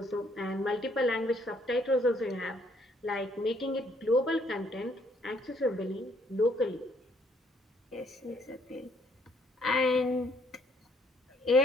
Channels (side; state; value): both; normal; correlation 0.67